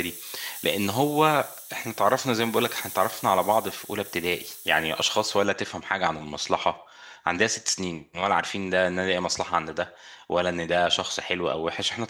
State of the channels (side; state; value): both; identical; correlation 1.00